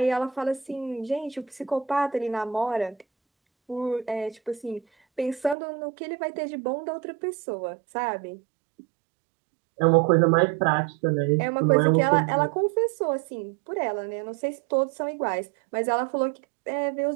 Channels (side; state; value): left; drops out; at 5.6 s